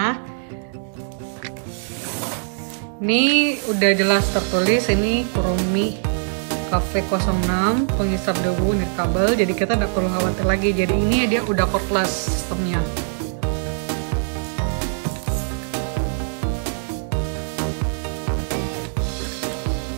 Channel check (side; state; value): left; silent; digital silence